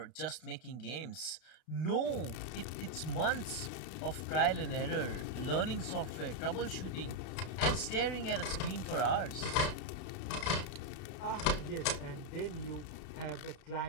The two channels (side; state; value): right; late; 32 ms